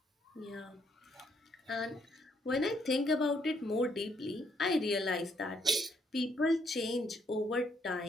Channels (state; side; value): normal; both; correlation 0.71